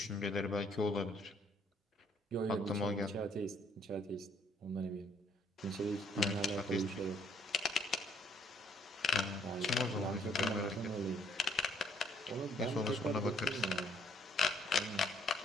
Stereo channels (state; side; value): normal; both; correlation 0.66